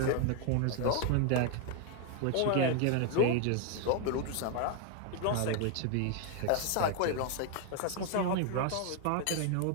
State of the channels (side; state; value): both; different; correlation 0.00